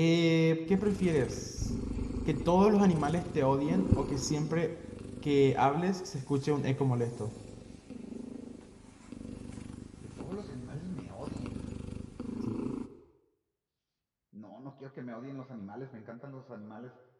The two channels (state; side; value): identical; both; correlation 1.00